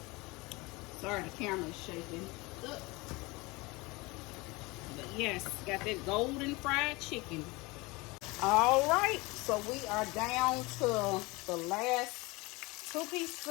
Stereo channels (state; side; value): quieter; right; 24.1 dB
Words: sorry the camera's shaking. Ugh. But yes, got that golden fried chicken. All right, so we are down to the last 2 pieces